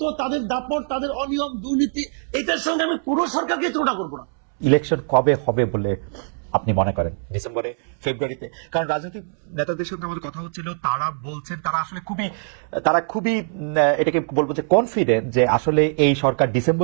তাদের দাপট, তাদের অনিয়ম, দুর্নীতি, এটার সঙ্গে আমি পুরো সরকারকে তুলনা করবো না। ইলেকশন কবে হবে বলে আপনি মনে করেন? ডিসেম্বরে, ফেব্রুয়ারিতে? কারণ রাজনৈতিক নেতাদের সঙ্গে আমাদের কথা হচ্ছিল, তারা বলছেন তারা আসলে খুবই এটাকে বলবো যে কনফিডেন্ট যে আসলে এই সরকার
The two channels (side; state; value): left; silent; 64 dB below the other